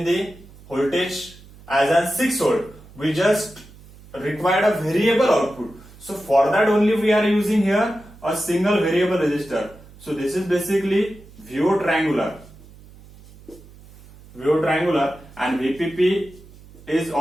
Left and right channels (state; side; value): noise; right; hum, 22 dB below the sound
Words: the voltage as an 6 volt. We just required a variable output. So for that only we are using here a single variable resistor. So this is basically VO triangular and VPP is